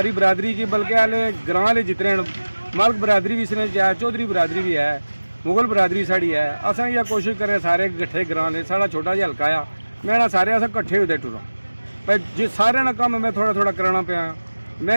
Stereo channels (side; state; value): both; inverted; correlation -1.00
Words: बरादरी की बल्कि हाले ग्रां वाले जितने मलक बरादरी भी इसने है चौधरी बरादरी भी है मुगल बरादरी साड़ी है अस ये कोशिश करें सारे कट्ठे ग्रां ने साड़ा छोटा जिहा हल्का आ मैं ना सारे अस कट्ठे होते टूरां भाई जे सारे ना कम मैं थोड़ा थोड़ा कराना पाया